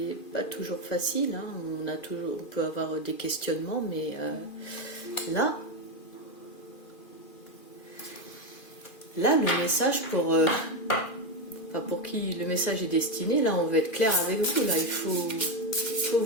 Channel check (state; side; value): late; right; 2.4 ms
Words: pas toujours facile, hein. On peut avoir des questionnements, mais là le message pour qui le message est destiné, là on veut être clair avec vous, là il faut